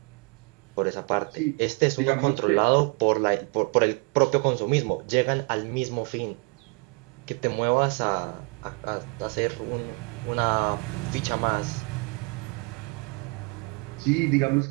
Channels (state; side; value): quieter; left; 31.3 dB